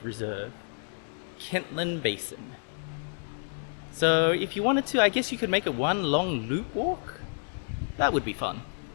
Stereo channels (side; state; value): right; silent; 58 dB below the other